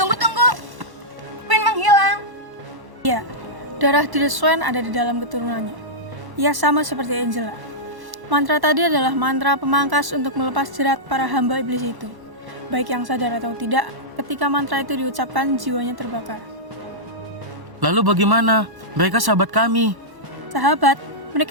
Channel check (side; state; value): left; late; 1.1 ms